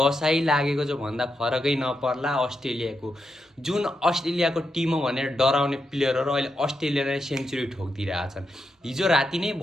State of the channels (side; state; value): both; normal; correlation 0.85